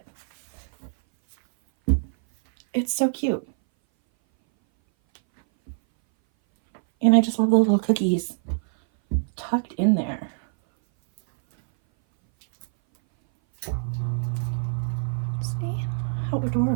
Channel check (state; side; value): silent; left; 59 dB below the other